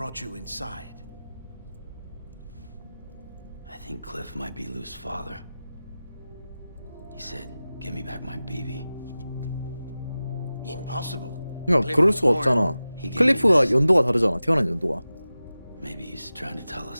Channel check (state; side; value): inverted; both; correlation -0.96